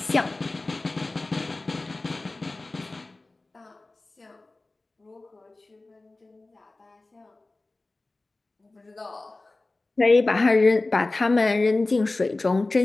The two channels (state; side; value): quieter; right; 3.1 dB